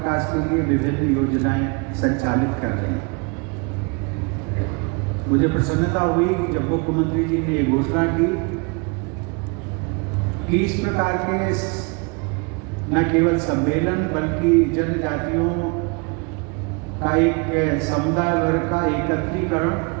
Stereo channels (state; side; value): quieter; left; 31.6 dB